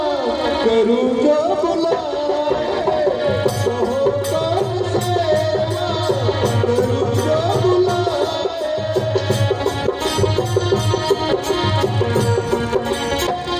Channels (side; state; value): both; identical; correlation 1.00